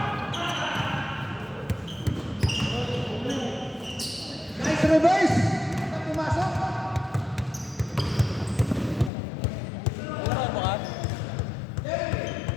Nice reverse. Pumasok.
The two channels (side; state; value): right; drops out; at 9.1 s